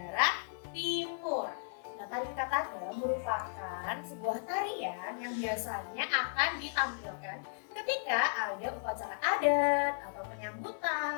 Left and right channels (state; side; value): silent; right; digital silence